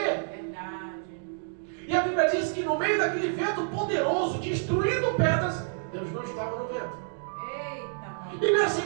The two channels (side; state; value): left; silent; digital silence